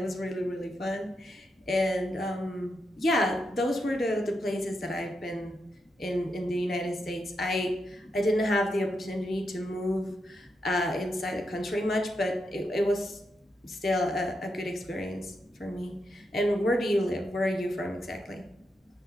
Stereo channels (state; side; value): normal; both; correlation 0.84